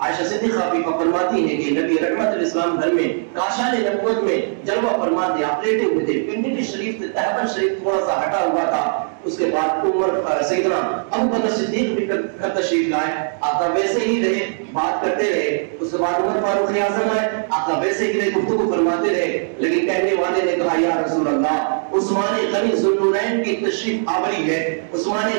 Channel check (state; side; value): silent; left; digital silence